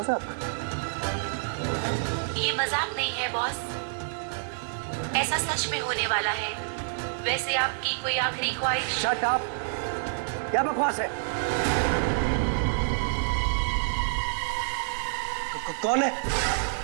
ये मजाक नहीं है बॉस, ऐसा सच में होने वाला है। वैसे आपकी कोई आखिरी ख्वाहिश? Shut up! क्या बकवास है? कौन है?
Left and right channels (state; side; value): silent; left; digital silence